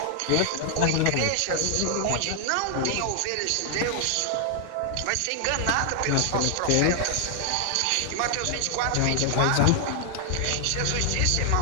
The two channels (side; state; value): both; different; correlation 0.00